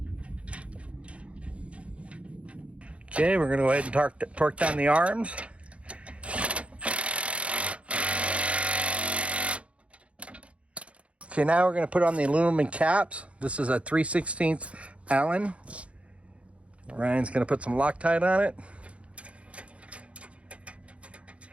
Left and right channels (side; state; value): left; late; 0.062 ms